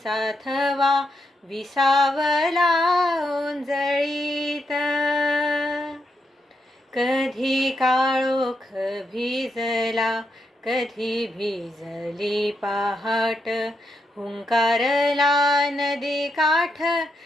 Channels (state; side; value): normal; both; correlation 0.82